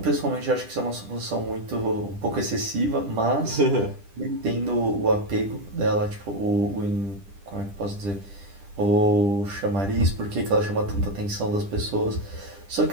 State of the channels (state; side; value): late; left; 10 ms